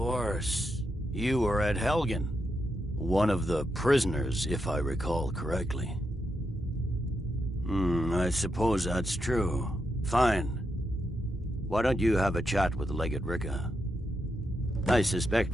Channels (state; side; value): normal; both; correlation 0.84